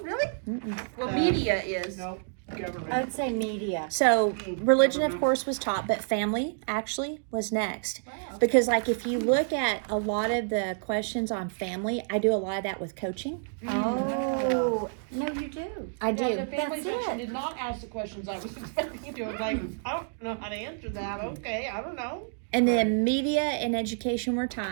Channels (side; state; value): left; silent; digital silence